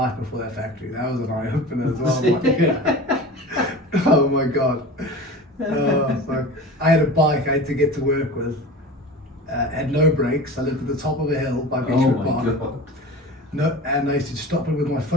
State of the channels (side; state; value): both; normal; correlation 0.34